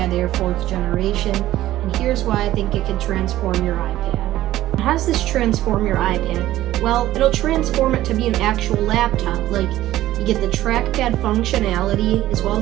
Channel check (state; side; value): quieter; left; 14.7 dB